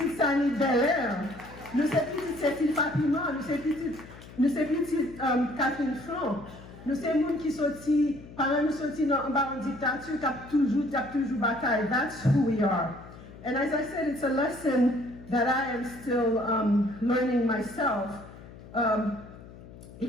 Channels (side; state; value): left; noise; hum, 17 dB below the sound